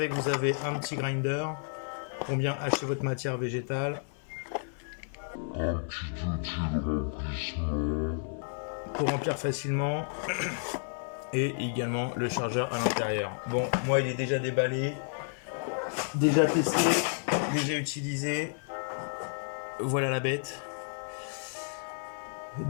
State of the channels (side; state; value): right; silent; 57 dB below the other